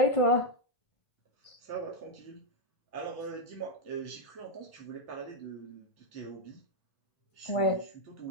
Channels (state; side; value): late; right; 1.5 ms